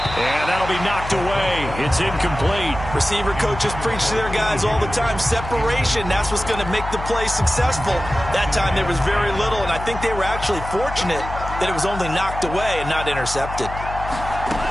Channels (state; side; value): noise; left; hum, 9 dB below the sound